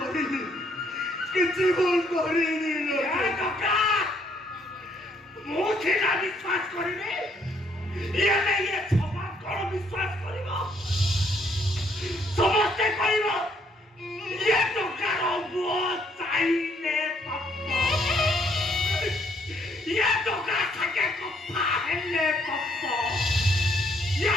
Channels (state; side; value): normal; both; correlation 0.68